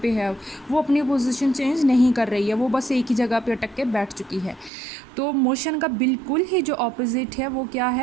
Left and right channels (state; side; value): drops out; left; at 4.7 s